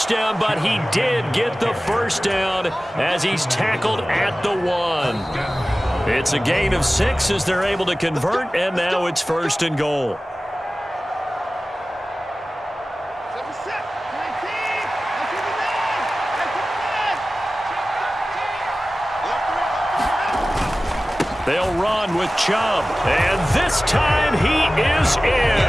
but he did get the 1st down as he's tackled at the 1. It's a gain of 6 as they're able to convert, and now it's 1st and goal. They'll run with Chubb. And this time he is in.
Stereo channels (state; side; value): normal; both; correlation 0.96